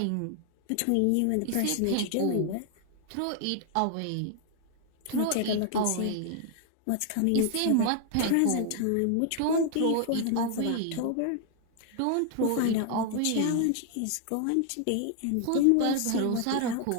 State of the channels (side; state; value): both; different; correlation 0.00